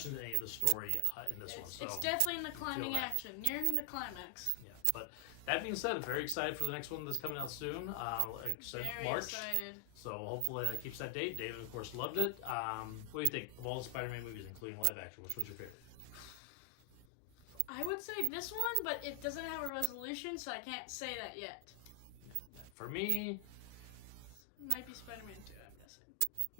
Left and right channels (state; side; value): different; both; correlation 0.00